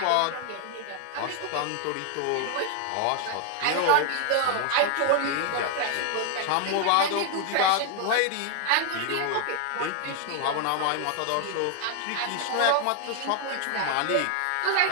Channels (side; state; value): both; different; correlation 0.00